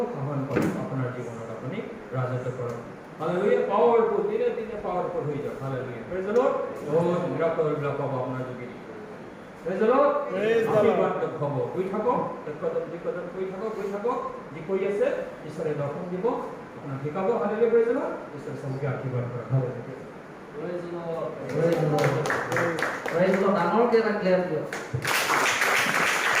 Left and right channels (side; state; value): both; identical; correlation 1.00